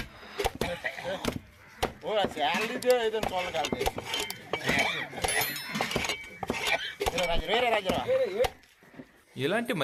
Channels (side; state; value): both; identical; correlation 1.00